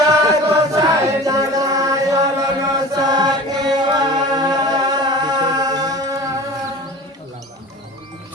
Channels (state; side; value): normal; both; correlation 0.37